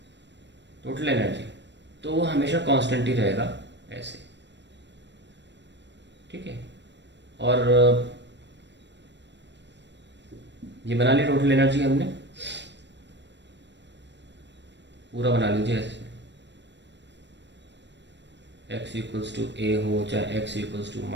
टोटल एनर्जी, तो वो हमेशा कांस्टेंट ही रहेगा ऐसे, ठीक है। और ये बना लिया टोटल एनर्जी हमने, पूरा बना लीजिए ऐसे, x इक्वल्स टू a हो चाहे x इक्वल्स टू -a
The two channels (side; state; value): left; late; 0.51 ms